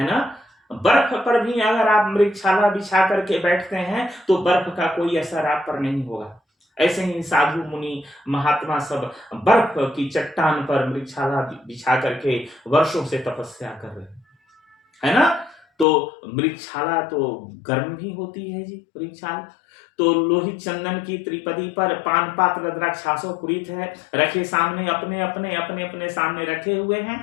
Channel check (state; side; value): drops out; right; at 15.9 s